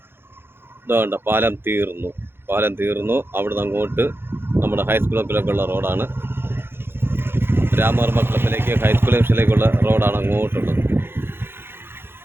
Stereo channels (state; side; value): late; left; 0.11 ms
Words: ഇതുകൊണ്ട് പാലം തീർന്നു. അവിടെ നിന്ന് അങ്ങോട്ട് നമ്മുടെ ഹൈസ്കൂളിലേക്കുള്ള റോഡാണ്. രാമവർമ്മ ക്ലബിലേക്ക് ഹൈസ്കൂൾ ജംഗ്ഷനിലേക്കുള്ള റോഡാണ് അങ്ങോട്ടുള്ളത്.